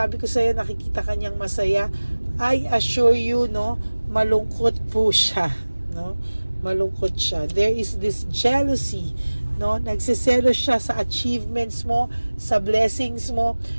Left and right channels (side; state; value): both; inverted; correlation -1.00